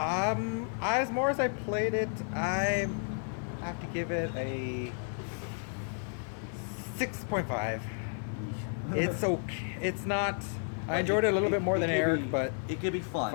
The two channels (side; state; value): right; silent; 56 dB below the other